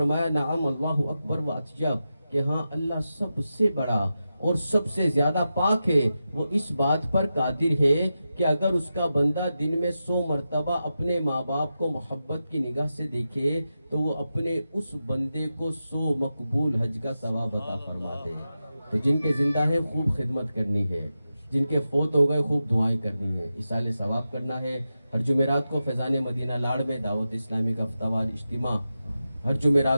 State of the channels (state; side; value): inverted; both; correlation -0.91